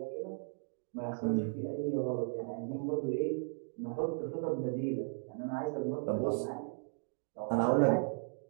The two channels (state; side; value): silent; left; 54 dB below the other